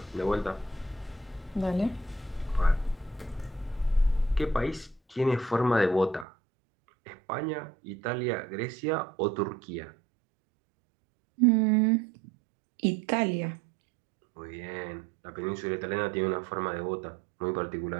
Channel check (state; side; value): drops out; left; at 6.2 s